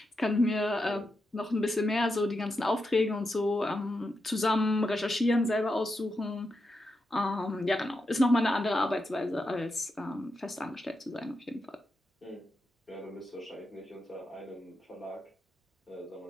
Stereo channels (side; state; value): both; normal; correlation 0.86